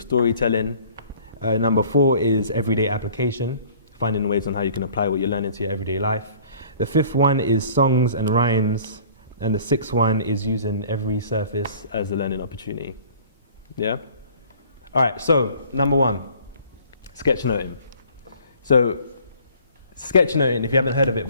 Number 4 is everyday application, finding ways on how you can apply what you learn into your everyday life. The 5th one is songs and rhymes. And the 6th one is using every surface as a learning opportunity. Yeah? All right, so number 1, sketchnoting. So sketchnoting, if you haven't heard of it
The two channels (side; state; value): both; inverted; correlation -0.51